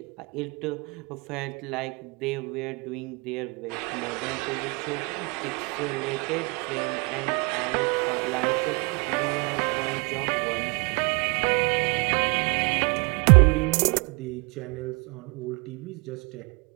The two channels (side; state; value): left; quieter; 30.3 dB